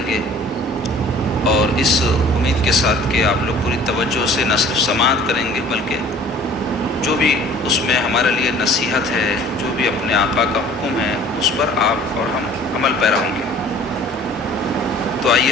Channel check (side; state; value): both; normal; correlation 0.50